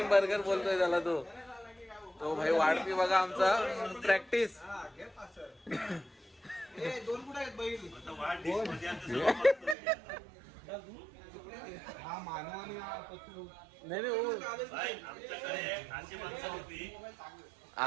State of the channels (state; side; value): drops out; left; at 9.8 s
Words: बर्गर बोलतोय त्याला तो भाई वाढपी बघा आमचा प्रॅक्टिस नाही